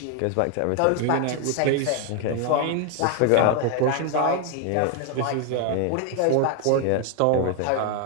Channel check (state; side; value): different; both; correlation 0.01